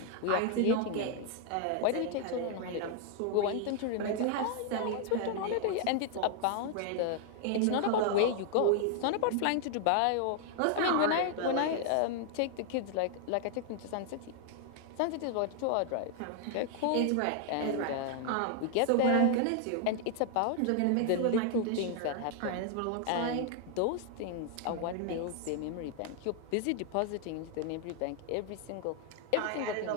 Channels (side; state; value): both; different; correlation 0.00